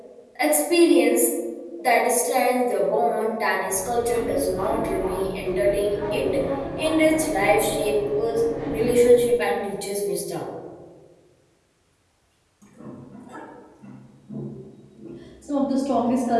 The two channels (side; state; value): both; identical; correlation 1.00